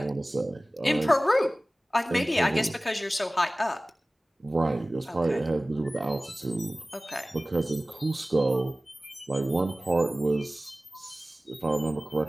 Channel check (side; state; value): both; normal; correlation 0.97